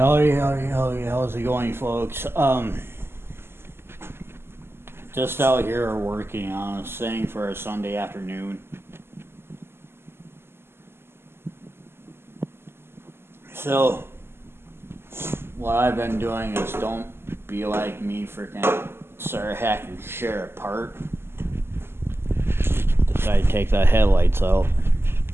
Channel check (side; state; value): left; late; 0.12 ms